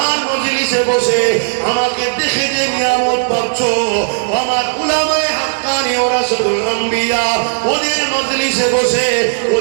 মজলিসে বসে আমাকে দেখে যে নিয়ামত পাচ্ছ, আমার উলামায়ে হাক্কানি ওয়া রাসূলুল আম্বিয়া ওদের মজলিসে বসে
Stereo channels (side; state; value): left; silent; digital silence